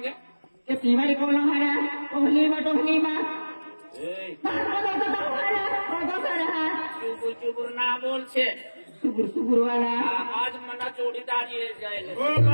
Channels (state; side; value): inverted; both; correlation -1.00